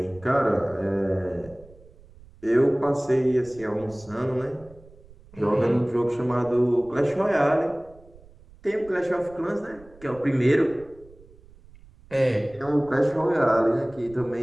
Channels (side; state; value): right; noise; rumble, 24 dB below the sound